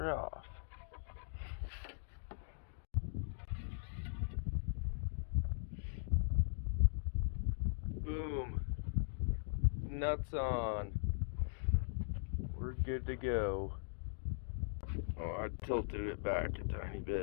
off. Boom. Nuts on. We're good to go. Oh, I tilted it back a tiny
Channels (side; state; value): right; silent; digital silence